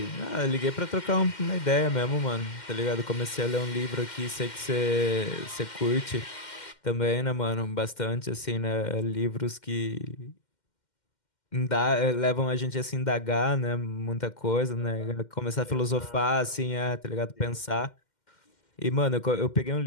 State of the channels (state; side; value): late; right; 2.1 ms